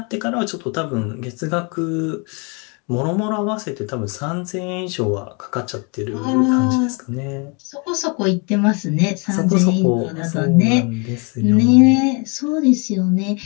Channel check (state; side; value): quieter; right; 33.2 dB